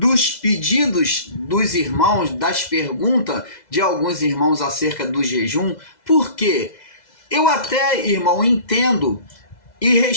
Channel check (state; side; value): late; right; 2.0 ms